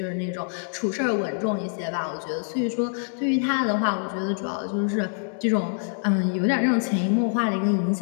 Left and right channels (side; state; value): right; silent; 62 dB below the other